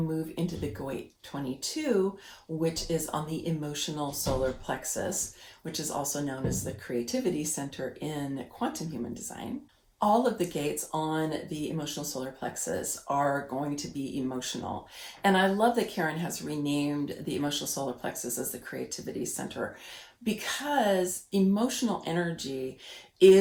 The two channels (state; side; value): identical; both; correlation 1.00